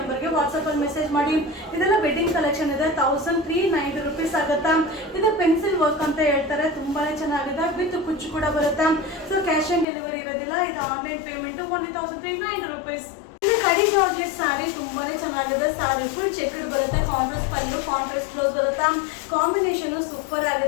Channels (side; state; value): right; drops out; at 9.9 s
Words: ನಂಬರ್ಗೆ ವಾಟ್ಸ್ಆಪ್ ಅಲ್ಲಿ ಮೆಸೇಜ್ ಮಾಡಿ. ಇದೆಲ್ಲ ವೆಡ್ಡಿಂಗ್ ಕಲೆಕ್ಷನ್ ಇದೆ. 1390 rupees ಆಗುತ್ತೆ. ಇದು ಪೆನ್ಸಿಲ್ ವರ್ಕ್ ಅಂತ ಹೇಳ್ತಾರೆ. ತುಂಬಾನೇ ಚೆನ್ನಾಗಿದೆ. ವಿತ್ ಕುಚ್ಚು ಕೂಡ ಬರುತ್ತೆ. ಸೊ ಕ್ಯಾಶ್ ಆನ್ ಡೆಲಿವರಿ ಇರೋದಿಲ್ಲ. ಇದು ಆನ್ಲೈನ್ ಪೇಮೆಂಟ್. Only 1390 rupees. ಇದು ಕಡಿ ಜಾರ್ಜೆಟ್ ಸ್ಯಾರಿ ತುಂಬಾನೇ ಚೆನ್ನಾಗಿದೆ. ಸ್ಯಾರಿ ಫುಲ್ ಚೆಕ್ಡ್ ಬರುತ್ತೆ. ಕಾಂಟ್ರಾಸ್ಟ್ ಪಲ್ಲು, ಕಾಂಟ್ರಾಸ್ಟ್ ಬ್ಲೌಸ್ ಬರುತ್ತೆ. ಕಾಂಬಿನೇಷನ್ ಸೂಪರ್